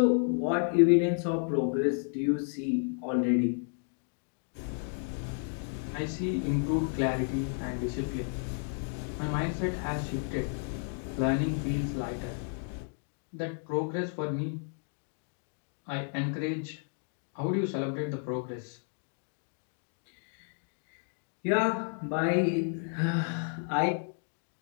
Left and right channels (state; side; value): silent; right; 56 dB below the other